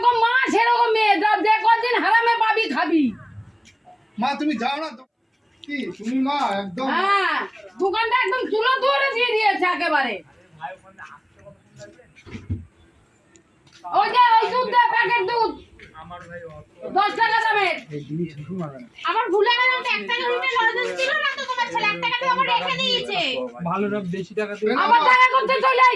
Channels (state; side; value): identical; both; correlation 1.00